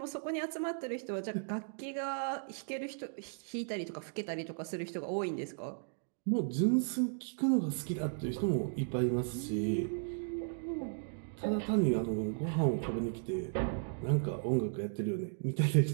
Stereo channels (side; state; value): left; silent; digital silence